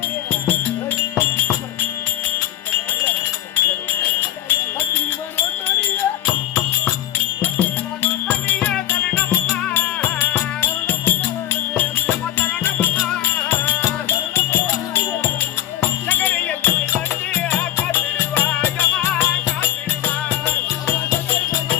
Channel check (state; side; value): quieter; right; 12.9 dB